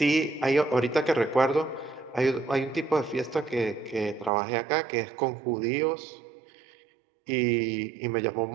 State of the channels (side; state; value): left; drops out; at 4.3 s